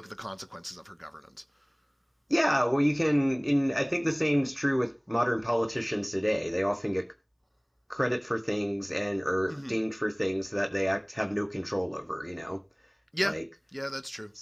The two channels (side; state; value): both; identical; correlation 1.00